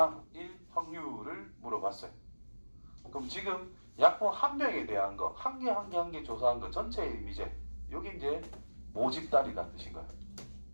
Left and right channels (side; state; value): both; inverted; correlation -1.00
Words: 확률을 물어봤어요. 그럼 지금 약품 한 병에 대한 거, 한 개 조사한 거 전체의 의미제, 여기 이제 모집단이라는 뜻인 거예요.